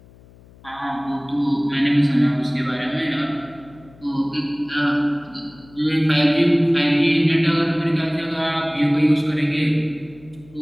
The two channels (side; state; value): left; noise; hum, 25 dB below the sound